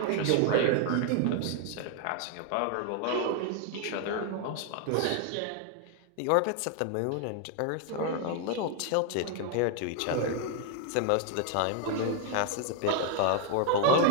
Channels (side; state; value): both; different; correlation 0.00